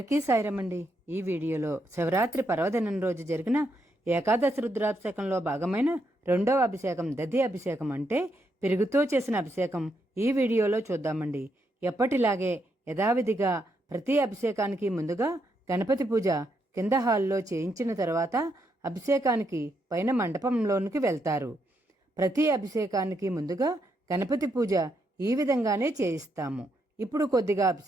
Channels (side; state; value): both; normal; correlation 0.79